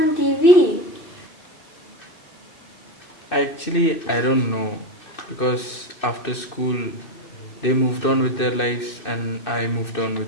on TV? Actually, I don't know, because after school they moved on with their lives and I moved on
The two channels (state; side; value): late; right; 2.6 ms